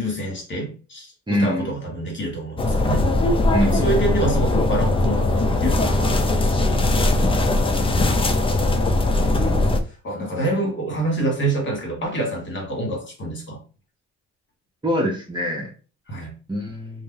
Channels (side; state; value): both; normal; correlation 0.62